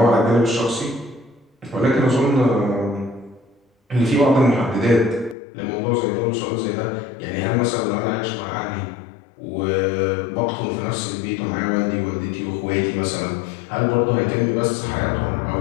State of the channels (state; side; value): drops out; right; at 5.4 s